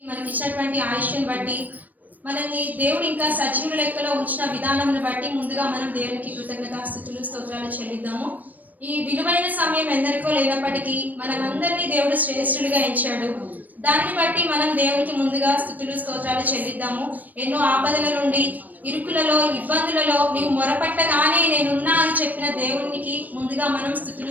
మనకిచ్చినటువంటి ఆయుష్ని బట్టి, మనల్ని దేవుడు ఇంకా సజీవుల లెక్కలో ఉంచిన విధానంను బట్టి ముందుగా మనం దేవునికి కృతజ్ఞతాస్తుతులు స్తోత్రాలు చెల్లిద్దాము. ఈ విలువైన సమయం ఎందరికో లేనప్పటికీ మనమందరినీ దేవుడు శ్రేష్ఠులుగా ఎంచాడు. దాన్ని బట్టి మనం దేవునికి ముందుగా స్తుతులు స్తోత్రాలు చెల్లిద్దాము. ఎన్నో ఆపదల నుండి, ఇరుకులలో, ఇబ్బందులలో నీవు మొరపట్టగానే నేనున్నా అని చెప్పిన దేవునికి ముందుగా మనం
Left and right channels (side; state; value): left; late; 0.081 ms